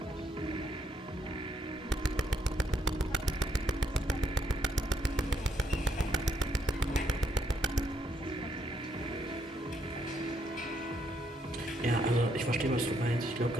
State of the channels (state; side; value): normal; both; correlation 0.73